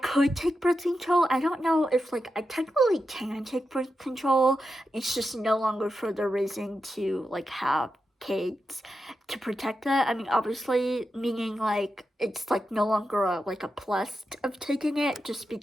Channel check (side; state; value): both; normal; correlation 0.88